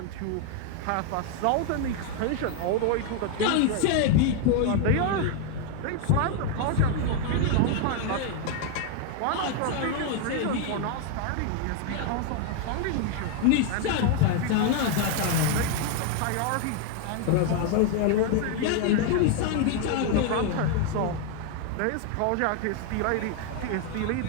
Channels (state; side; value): different; both; correlation 0.00